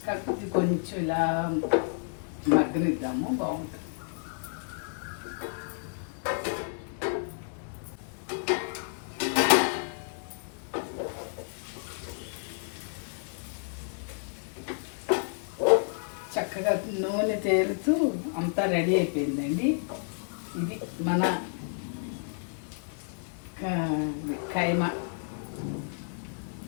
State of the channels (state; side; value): silent; right; digital silence